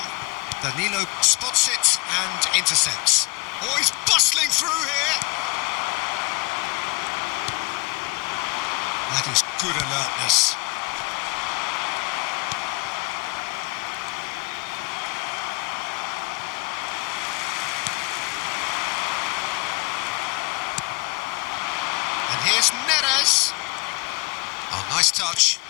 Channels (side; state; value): right; quieter; 28.3 dB